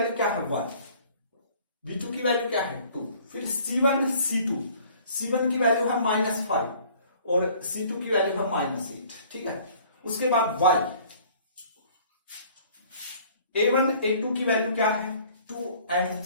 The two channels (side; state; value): both; inverted; correlation -0.54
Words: क्या है 1, b2 की वैल्यू क्या है 2, फिर c1 c2, c1 की वैल्यू है -5 और c2 की वैल्यू है -8, ठीक है। उसके बाद y a1 a2 की वैल्यू क्या है 2 and